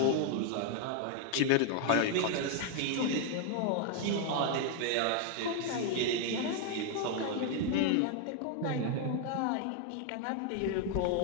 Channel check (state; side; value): different; both; correlation 0.00